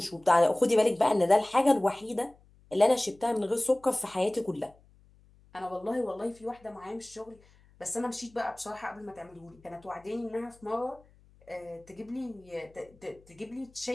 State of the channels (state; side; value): noise; left; hum, 28 dB below the sound